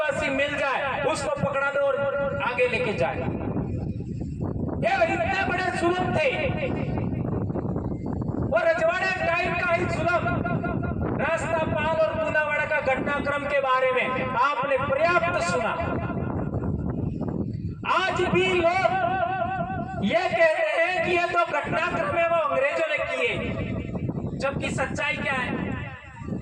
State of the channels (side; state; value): both; identical; correlation 1.00